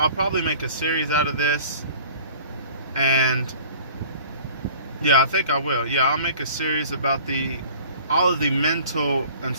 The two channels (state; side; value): inverted; both; correlation -0.46